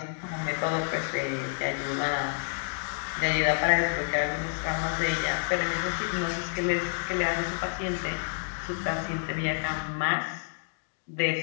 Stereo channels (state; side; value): silent; right; digital silence